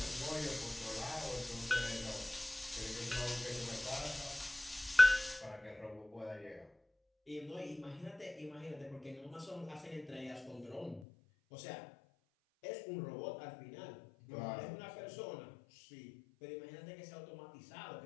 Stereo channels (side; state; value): right; drops out; at 11.0 s